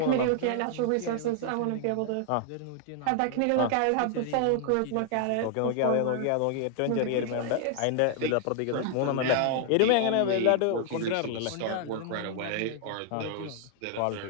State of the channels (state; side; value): different; both; correlation 0.00